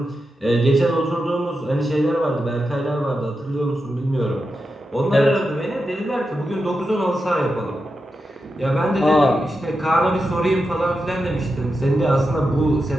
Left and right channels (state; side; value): normal; both; correlation 0.89